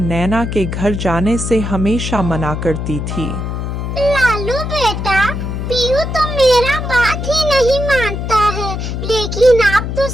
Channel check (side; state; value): left; noise; hum, 4 dB below the sound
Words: के घर जाने से हमेशा मना करती थी। लालू बेटा, पीयू तो मेरा बात ही नहीं मानता है, लेकिन आप तो